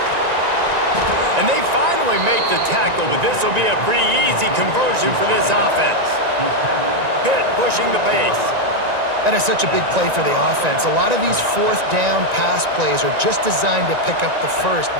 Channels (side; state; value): left; late; 1.9 ms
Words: And they finally make the tackle, but this will be a pretty easy conversion for this offense. Pitt pushing the pace. That is such a big play for the offense. A lot of these fourth down pass plays are just designed to pick up the first.